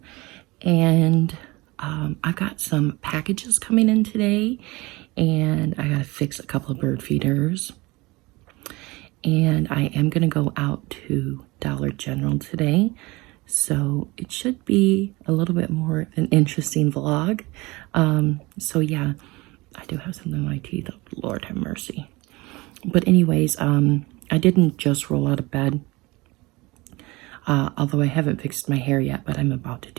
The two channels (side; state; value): left; quieter; 22.7 dB